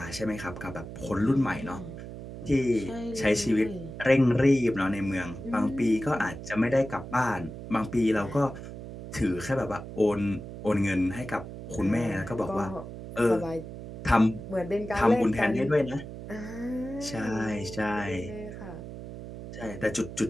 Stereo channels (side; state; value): right; noise; hum, 11 dB below the sound